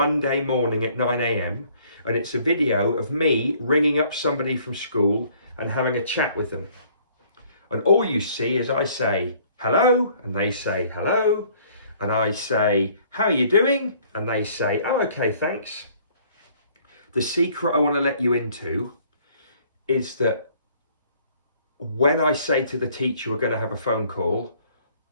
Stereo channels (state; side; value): inverted; both; correlation -0.59